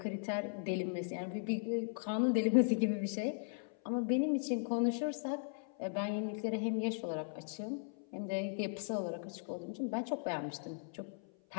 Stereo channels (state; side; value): silent; right; 53 dB below the other